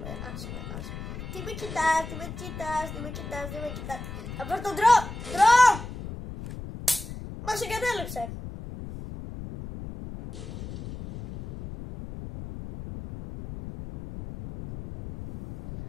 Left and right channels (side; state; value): left; noise; rumble, 10 dB below the sound